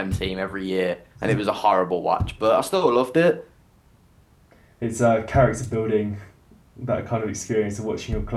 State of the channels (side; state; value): both; identical; correlation 1.00